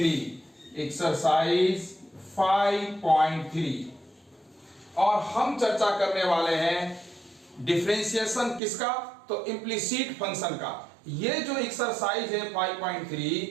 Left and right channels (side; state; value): left; drops out; at 8.6 s